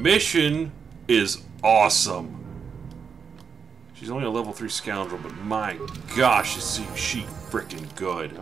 is awesome. She's only a level 3 scoundrel, but my gosh, is she freaking good.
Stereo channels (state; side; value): quieter; left; 6.2 dB